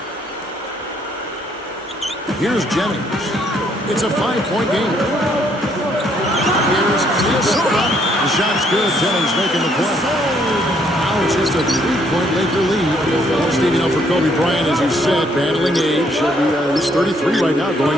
Here's Jennings. It's a 5-point game. Here's Minnesota. The shot's good. Jennings making the play. Now it's just a 3-point Laker lead. Well, Steve, you know, for Kobe Bryant, as you said, battling age. He's 33 right now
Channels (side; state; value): both; normal; correlation 0.68